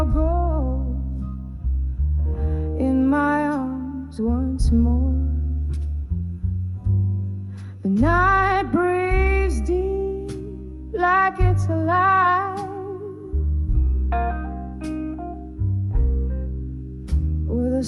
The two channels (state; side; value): identical; both; correlation 1.00